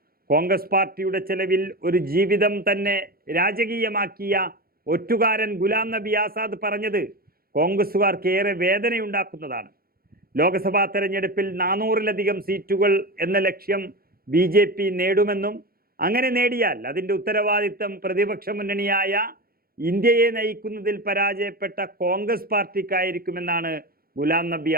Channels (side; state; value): left; late; 0.44 ms